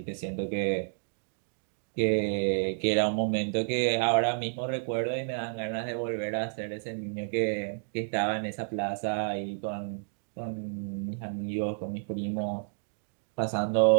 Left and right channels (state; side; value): silent; left; digital silence